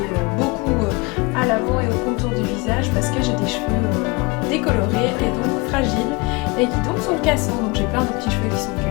beaucoup à l'avant et au contour du visage parce que j'ai des cheveux décolorés et donc fragiles et qui donc sont cassants. Donc j'ai plein de petits cheveux qui sont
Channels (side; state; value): right; quieter; 26.6 dB